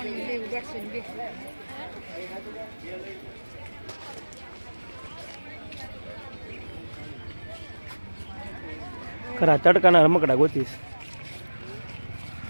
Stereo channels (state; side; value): inverted; both; correlation -1.00